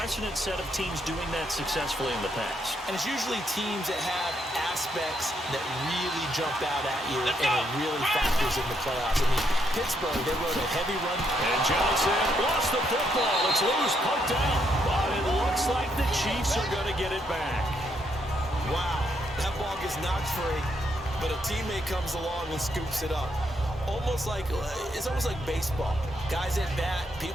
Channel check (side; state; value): both; normal; correlation 0.76